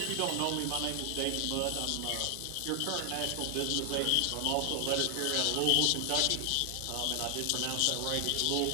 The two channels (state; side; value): different; both; correlation 0.00